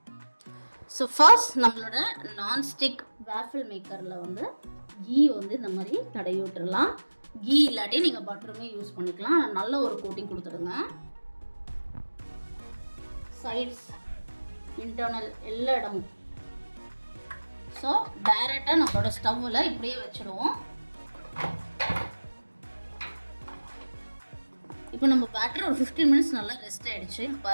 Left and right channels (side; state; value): both; inverted; correlation -1.00